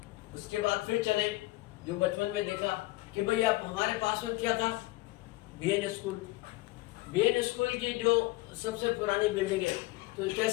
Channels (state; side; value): quieter; right; 20.2 dB